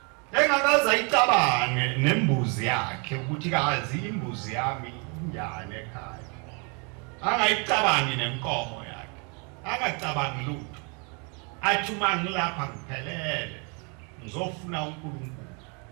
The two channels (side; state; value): left; quieter; 34.0 dB